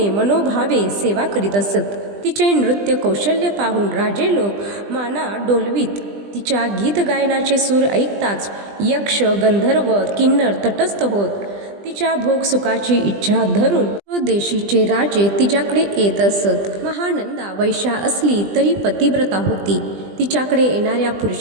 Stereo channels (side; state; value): left; late; 20 ms